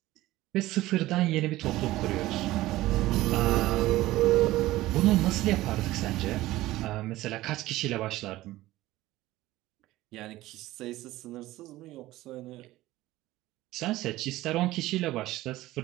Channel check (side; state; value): left; quieter; 16.9 dB